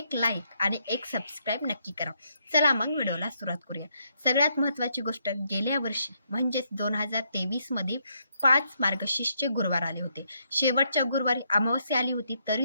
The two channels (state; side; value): inverted; both; correlation -0.75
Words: लाईक आणि एक सबस्क्राईब नक्की करा। चला मग व्हिडिओला सुरुवात करूया। सगळ्यात महत्त्वाची गोष्ट, गेल्या वर्षी म्हणजेच 2023 मध्ये 5 मार्गशीर्षचे गुरुवार आले होते। शेवटच्या गुरुवारी अमावस्या आली होती,